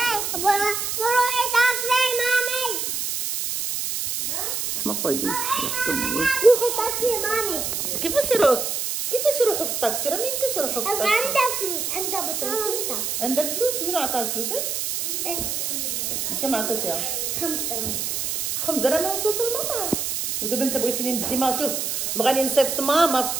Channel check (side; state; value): right; noise; hiss, 1 dB below the sound